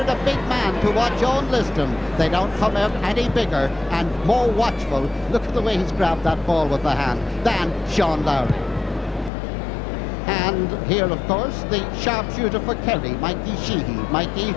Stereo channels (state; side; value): drops out; right; at 9.3 s